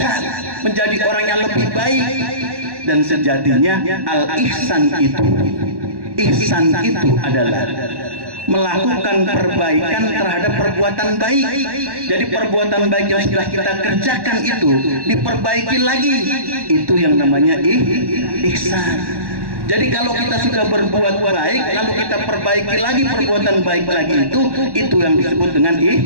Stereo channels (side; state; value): left; late; 1.1 ms